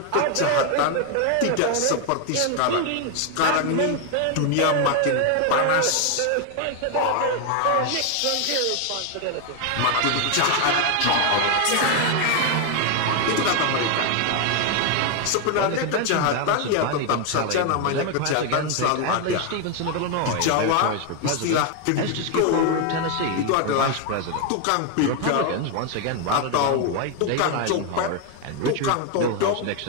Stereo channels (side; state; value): both; different; correlation 0.01